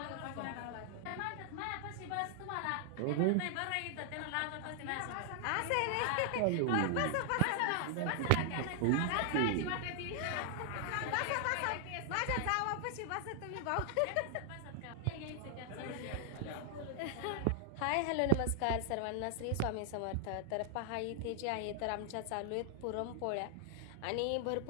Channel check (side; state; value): both; different; correlation 0.00